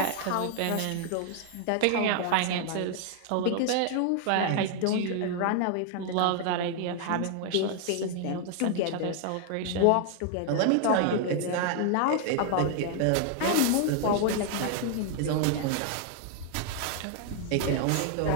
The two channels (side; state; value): both; different; correlation 0.00